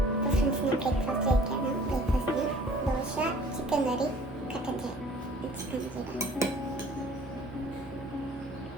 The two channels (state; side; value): normal; both; correlation 0.51